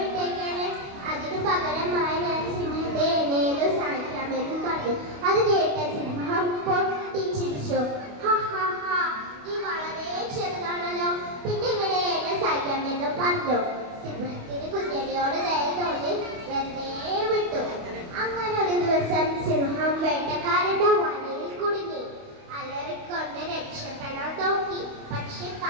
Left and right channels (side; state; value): left; late; 28 ms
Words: അതിനു പകരമായി ഞാൻ സിംഹത്തെ എന്നേത് സഹായിക്കാമെന്ന് പറഞ്ഞു. അത് കേട്ട സിംഹം പൊട്ടിച്ചിരിച്ചു. നീ വളരെ ചെറുതാണല്ലോ, പിന്നെ ഇങ്ങനെ എന്നെ സഹായിക്കാമെന്ന് പറഞ്ഞു. സിംഹത്തിന് കുഞ്ഞടിയോട് ദയ തോന്നി വെറുതെ വിട്ടു. അങ്ങനെ ഒരു ദിവസം സിംഹം വേട്ടക്കാരന്റെ വലയിൽ കുടുങ്ങി. അലറിക്കൊണ്ട് രക്ഷപ്പെടാൻ നോക്കി, പക്ഷെ